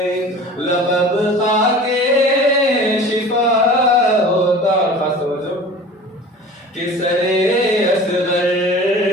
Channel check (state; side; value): normal; both; correlation 0.40